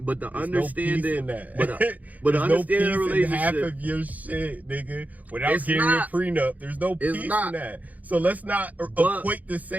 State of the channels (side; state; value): left; late; 0.077 ms